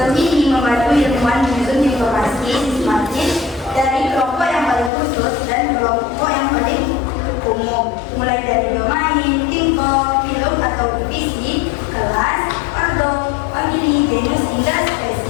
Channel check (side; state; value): right; drops out; at 4.9 s